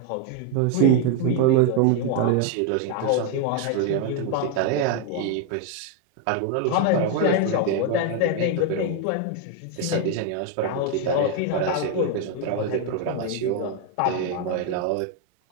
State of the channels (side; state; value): both; different; correlation 0.01